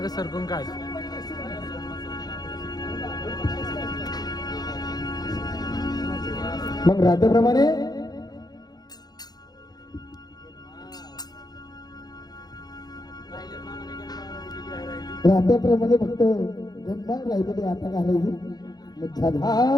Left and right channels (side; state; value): right; late; 0.19 ms